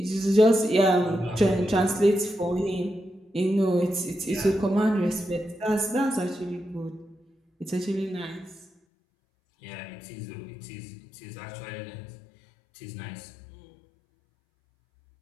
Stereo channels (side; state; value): right; drops out; at 8.7 s